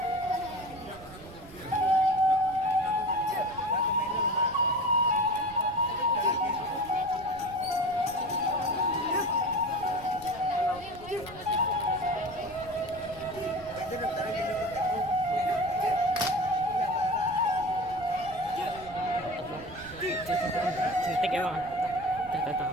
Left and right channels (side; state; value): right; noise; rumble, 18 dB below the sound